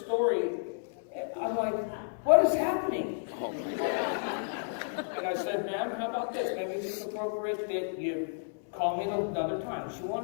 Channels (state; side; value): silent; right; 57 dB below the other